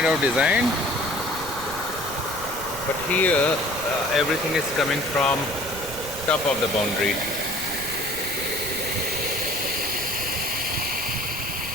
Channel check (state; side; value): noise; right; rumble, 15 dB below the sound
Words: of designed. But here everything is coming from top of the boundary.